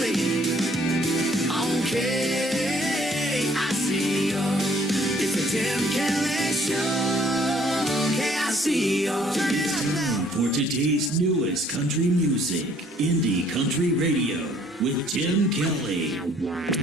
on KICR. It's the Tim Kelly Show, KICR. Turn it up now. For today's newest country music, Indie Country Radio with Tim Kelly.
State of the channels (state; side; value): normal; both; correlation 0.61